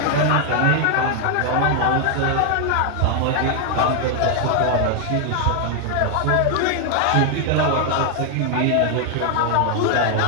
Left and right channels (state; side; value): different; both; correlation 0.00